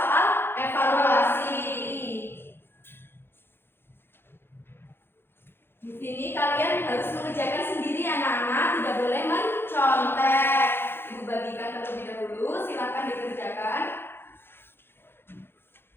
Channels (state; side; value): late; right; 0.11 ms